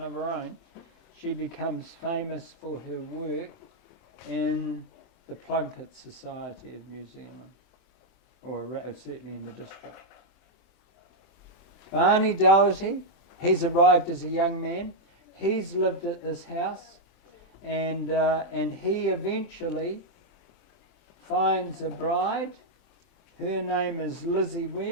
of her own, she becomes famous for her work in the Plunket Society of New Zealand, or certainly in the district. Barney Doherty, he's arrived as a young man. He's lived at this house, and he eventually finds a bride. Her name is Lizzie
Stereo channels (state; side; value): late; right; 23 ms